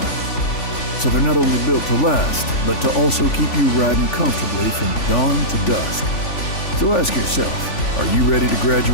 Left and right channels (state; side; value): late; right; 3.4 ms